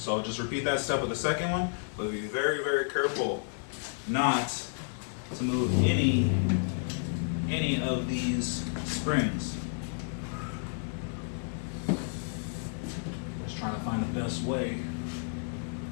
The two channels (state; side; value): silent; right; digital silence